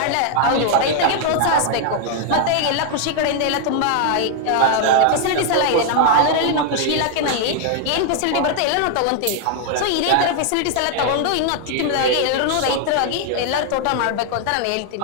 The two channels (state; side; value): different; both; correlation 0.00